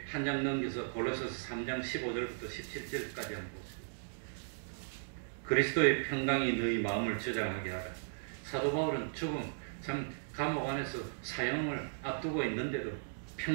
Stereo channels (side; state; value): left; silent; digital silence